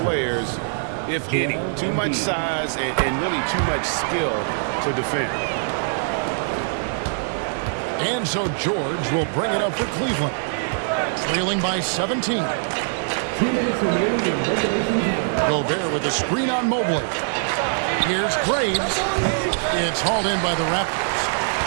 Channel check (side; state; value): left; silent; digital silence